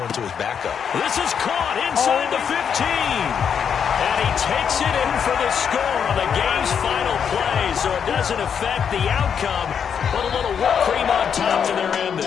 to his backup. This is caught inside the 15. And he takes it in for the score on the game's final play, so it doesn't affect the outcome, but a little whipped cream on top to their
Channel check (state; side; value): quieter; right; 7.4 dB